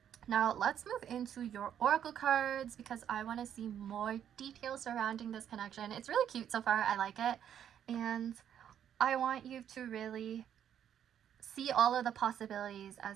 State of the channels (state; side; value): quieter; left; 9.5 dB